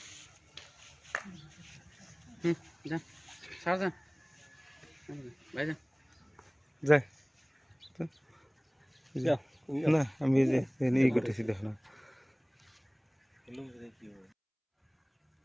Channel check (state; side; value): identical; both; correlation 1.00